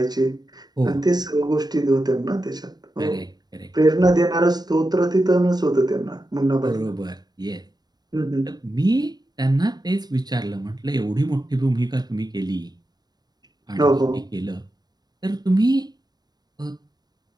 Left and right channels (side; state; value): left; late; 0.19 ms